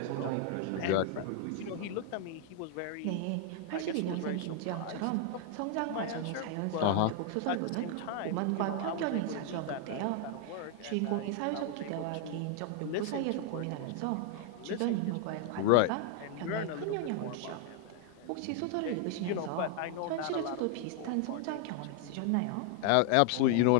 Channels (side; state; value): both; different; correlation 0.00